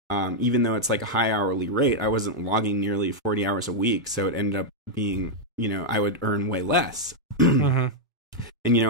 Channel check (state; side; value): normal; both; correlation -0.03